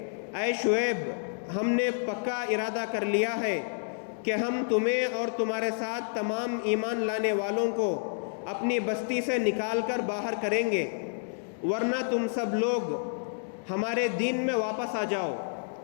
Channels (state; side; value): silent; right; digital silence